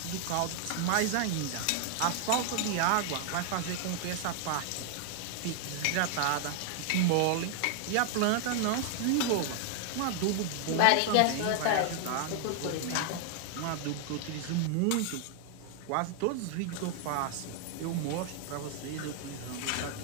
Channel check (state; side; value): different; both; correlation 0.00